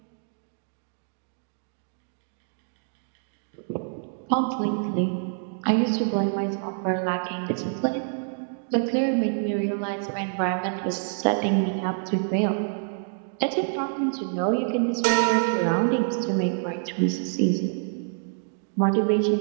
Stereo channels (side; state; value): left; silent; digital silence